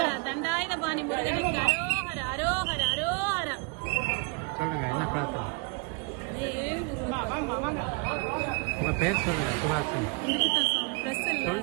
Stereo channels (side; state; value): left; quieter; 31.9 dB